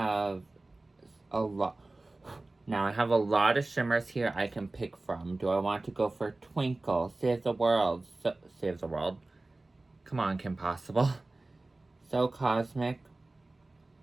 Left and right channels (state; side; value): quieter; left; 3.0 dB